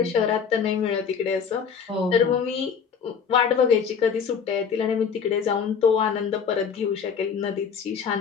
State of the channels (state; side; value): quieter; right; 6.6 dB